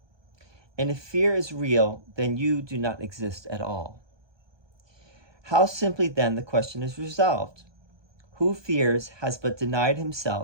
And if fear is real, then you do not exist at all. How simply then the question is resolved. Who fears has but denied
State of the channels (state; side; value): late; left; 1.2 ms